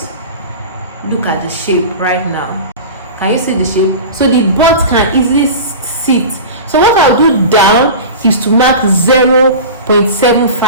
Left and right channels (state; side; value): inverted; both; correlation -0.32